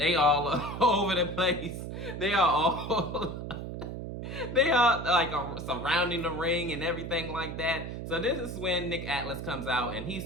they all over the place. They are all surrounding the ring and everything like that. So this is when Nick Atlas comes out and he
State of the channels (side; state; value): right; noise; hum, 7 dB below the sound